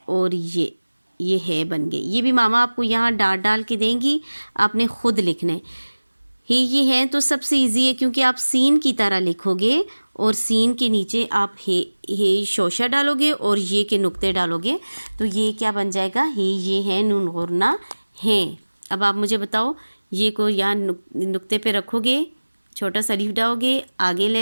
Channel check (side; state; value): both; inverted; correlation -1.00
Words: और ये है बन गए। ये भी मामा आपको यहाँ डाट डाल के देंगी, आपने ख़ुद लिखना है। ये है तो सबसे इजी है क्योंकि आप सीन की तरह लिखोगे और सीन के नीचे आप हे शोशा डालोगे और ये के नुक्ते डालोगे, तो ये क्या बन जाएगा, ये है नून और ना हैं। अब आप मुझे बताओ, ये को यहाँ नुक्ते पे रखोगे, छोटा सा लीफ डालोगे, आगे